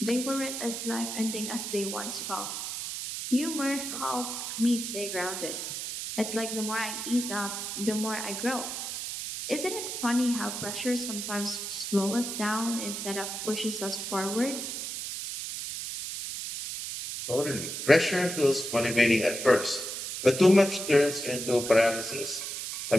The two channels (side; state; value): right; noise; hiss, 5 dB below the sound